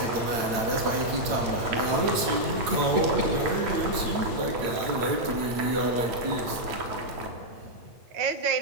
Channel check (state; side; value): late; left; 8.8 ms